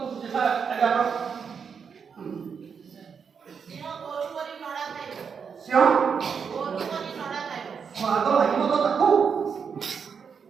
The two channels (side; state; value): left; quieter; 6.4 dB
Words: ସ୍ୱାଦ ଲାଗିବ ତ ତାକୁ।